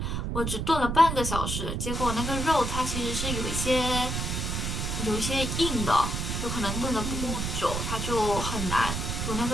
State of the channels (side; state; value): right; noise; rumble, 2 dB below the sound